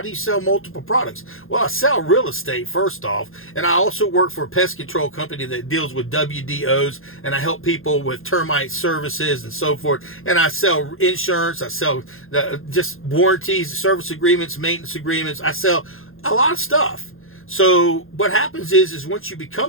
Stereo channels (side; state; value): right; late; 0.60 ms